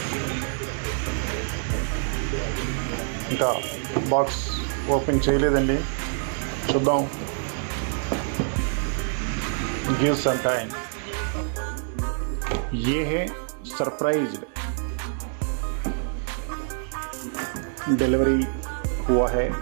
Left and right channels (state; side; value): silent; left; 61 dB below the other